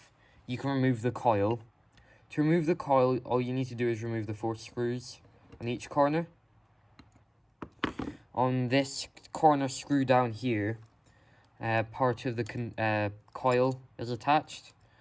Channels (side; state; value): both; identical; correlation 1.00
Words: you can remove the coil. To remove the coil, all you need to do is remove the 4 screws on each corner. On this corner screw down here, part of the coil is attached.